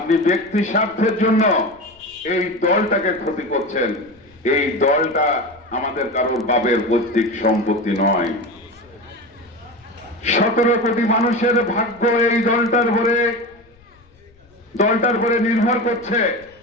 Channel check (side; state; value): left; noise; rumble, 29 dB below the sound